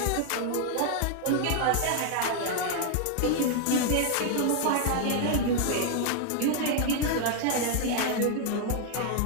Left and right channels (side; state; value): both; different; correlation 0.00